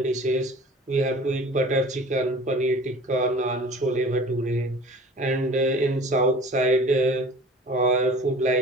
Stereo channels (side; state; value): both; normal; correlation 0.43